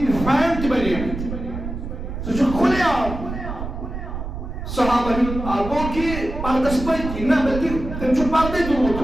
فین تہِ بنیمٕتۍ سُہ چھُ کھُلے عام صحابن ہُنٛد گوٚو کہِ پردس پٔتۍ نہ بلکہِ تٔمۍ چھُ پردے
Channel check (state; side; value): noise; right; rumble, 7 dB below the sound